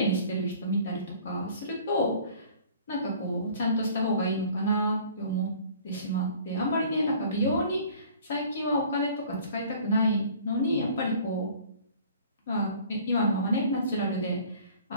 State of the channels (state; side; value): inverted; both; correlation -0.50